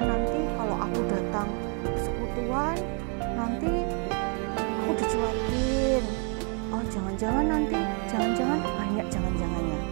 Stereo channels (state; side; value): quieter; left; 38.5 dB